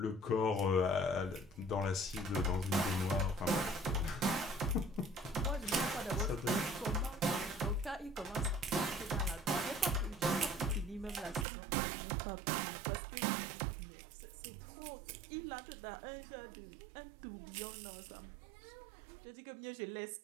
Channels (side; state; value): left; drops out; at 11.5 s